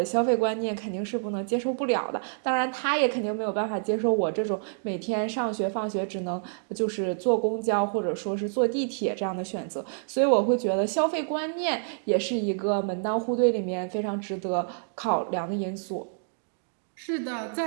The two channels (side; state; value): left; silent; digital silence